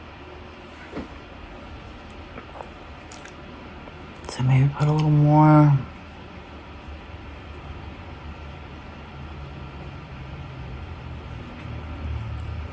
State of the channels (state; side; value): identical; both; correlation 1.00